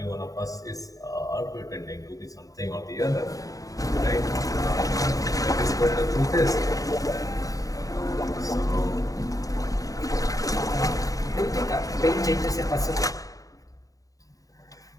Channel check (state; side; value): late; right; 0.17 ms